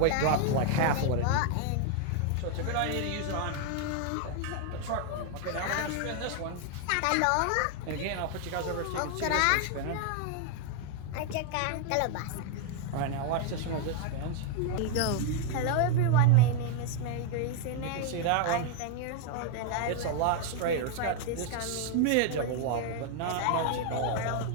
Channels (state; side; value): different; both; correlation 0.00